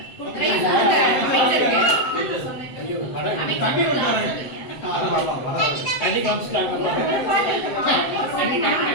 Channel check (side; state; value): right; late; 7.7 ms